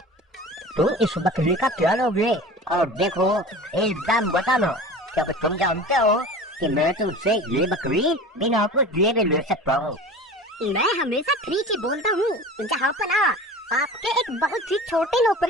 तुम इस बकरी का क्या लोगे? और देखो, एक दाम बताना, क्योंकि तुम जानते हो कि मैं तुमसे ये बकरी बिना कुछ दिए भी ले सकता हूँ। मैं हमेशा ठीक ही बोलता हूँ। जहाँ पना, आपके एक बहुत ही छोटे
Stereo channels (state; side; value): normal; both; correlation 0.37